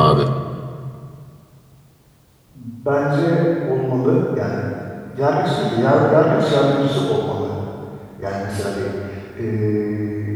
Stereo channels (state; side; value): identical; both; correlation 1.00